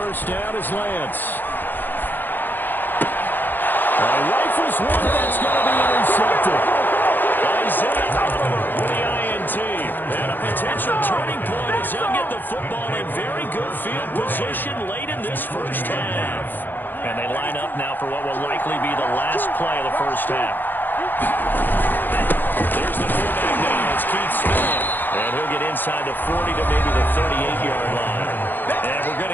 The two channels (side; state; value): right; late; 0.091 ms